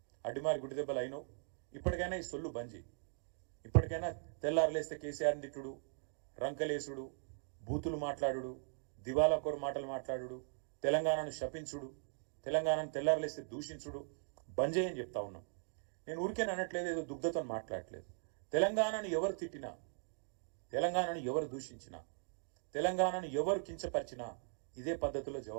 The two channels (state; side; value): silent; left; digital silence